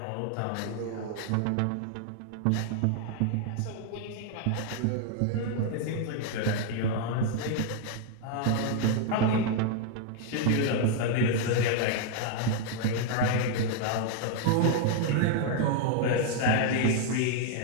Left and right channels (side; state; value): both; different; correlation 0.00